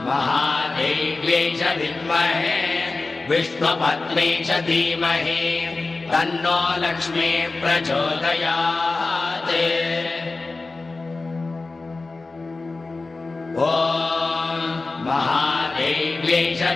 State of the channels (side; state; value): right; quieter; 3.6 dB